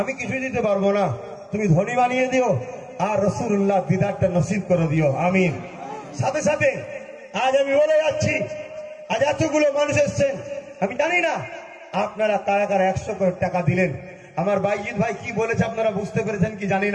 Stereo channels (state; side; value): identical; both; correlation 1.00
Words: আমি কিছুই দিতে পারবো না, তুমি ধনী বানিয়ে দিও আর রাসূলুল্লাহ দিদারটা নসিব করে দিও, আমিন। সাথে সাথে আজ আমি বলে যাচ্ছি, আজ এতগুলো মানুষ এসছেন, আমি জানি না আপনারা কারা কারা 100 করে টাকা দিলেন। আমার বাইজিৎ ভাই কি বলেছে আপনারা বুঝতে পেরেছেন কি জানি